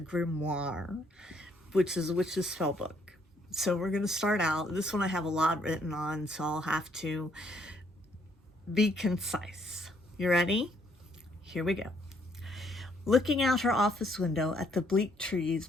which is a witch's spell book. So we're going to start out. This one I have a lot written on, so I'll have to be concise. You ready? Here we go. Looking out her office window at the bleak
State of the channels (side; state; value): both; normal; correlation 0.68